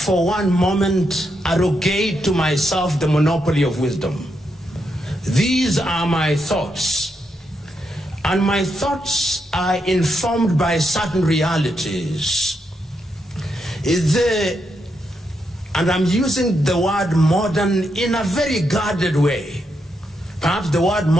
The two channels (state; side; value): normal; both; correlation 0.82